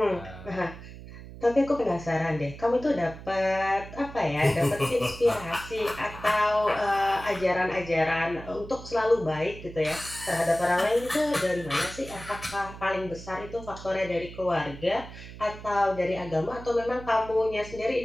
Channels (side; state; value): right; noise; hum, 14 dB below the sound